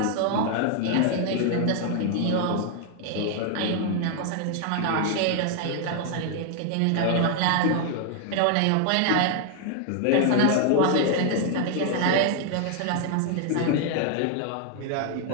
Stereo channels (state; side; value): different; both; correlation 0.00